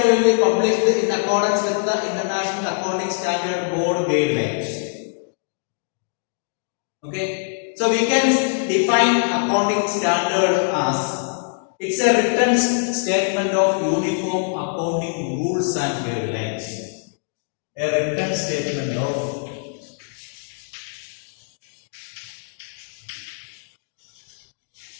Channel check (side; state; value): right; silent; digital silence